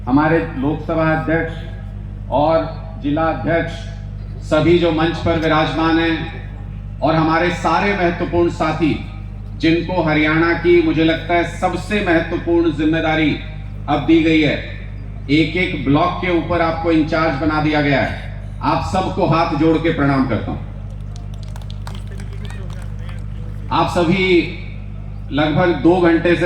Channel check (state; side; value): identical; both; correlation 1.00